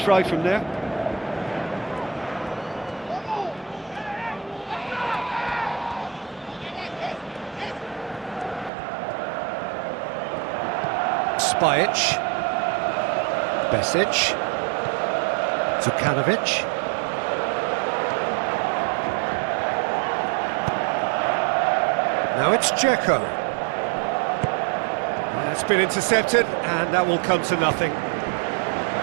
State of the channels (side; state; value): left; drops out; at 8.7 s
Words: from there. Spajic. Besic. Zukanovic. Now it's Dzeko. That's been intercepted, and that will come to nothing.